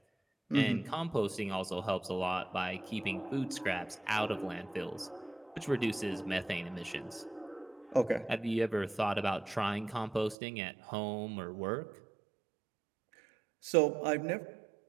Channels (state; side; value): drops out; left; at 10.4 s